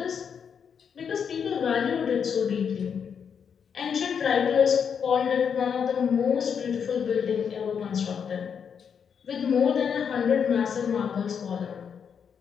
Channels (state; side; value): quieter; right; 7.1 dB